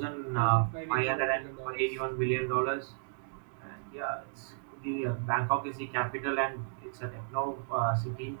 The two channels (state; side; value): silent; left; digital silence